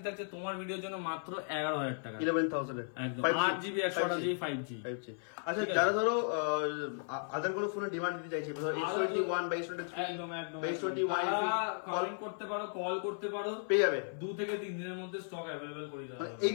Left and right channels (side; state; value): right; silent; 54 dB below the other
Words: থাকছে তোমার ভিডিওর জন্য মাত্র 11,000 টাকা, 11,000 এ একদম 8GB 128GB 5G। আচ্ছা, যারা ধরো আদার কোনো ফোনের ডিমান্ড দিতে চাইছে, ধরো X21 বা X23 একদম একদম বা X21 কমেন্ট করতে পারো, কল করতে পারো, পেয়ে যাবে 2 থেকে 3 দিনের মধ্যে স্টক অ্যাভেলেবল করে দেওয়া হবে। এই